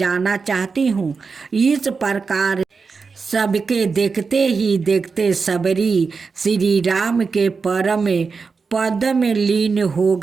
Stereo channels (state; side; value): quieter; left; 4.9 dB